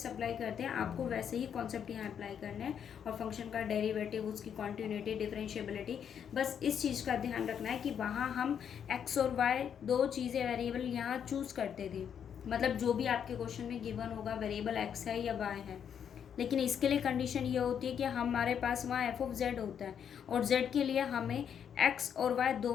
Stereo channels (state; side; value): quieter; right; 8.2 dB